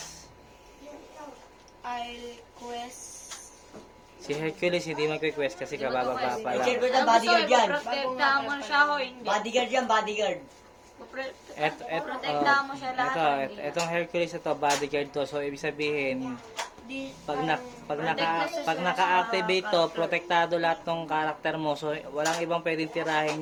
I'll quest. Si Hercules hindi mag-request kasi kabababa pa I-check ko lang. na bodyguard yan. Protektahan mo siya o hindi? Bodyguard yan, bodyguard. Protektahan mo siya lahat. Etong Hercules ito, bodyguard to. So, ibig sabihin, Di, pag naka-activate to, protektado lahat ng karakter mo. So, walang ibang pwedeng tirahin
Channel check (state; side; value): identical; both; correlation 1.00